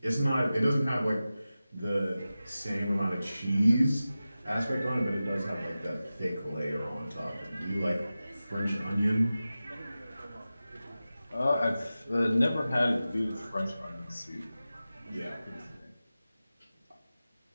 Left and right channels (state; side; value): inverted; both; correlation -0.95